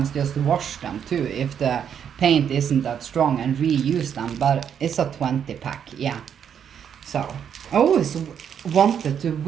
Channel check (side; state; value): left; quieter; 8.3 dB